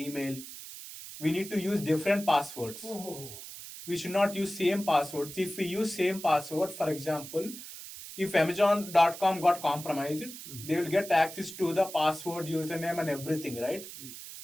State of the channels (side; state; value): right; noise; hiss, 12 dB below the sound